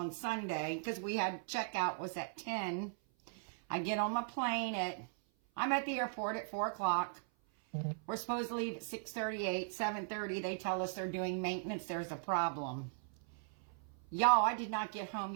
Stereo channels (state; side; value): silent; left; 52 dB below the other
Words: Sunday because we had checkout was at 10. I get on my plane I'm at the airport at 4 o'clock. We're supposed to leave at 6:38, 7:30. They tell us they're doing maintenance. There's a problem. Y'all, I did not get home